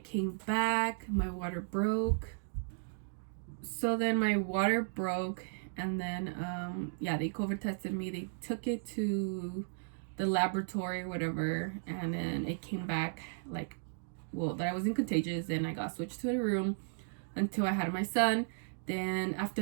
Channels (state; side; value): silent; left; digital silence